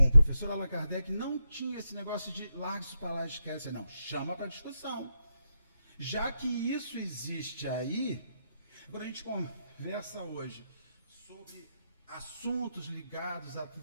o professor Allan Kardec não tinha esse negócio de larga isso para lá, esquece. Não, chama para discussão. Já que isso existe aí, quando a gente conversa hoje sobre assuntos ligados à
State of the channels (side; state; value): both; inverted; correlation -0.83